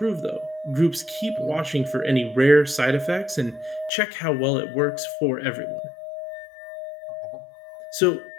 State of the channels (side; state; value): right; drops out; at 3.9 s